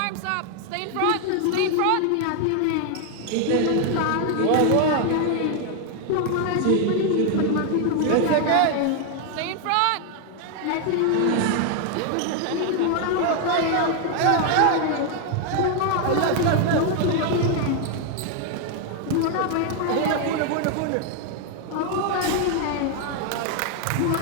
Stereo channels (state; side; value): different; both; correlation 0.00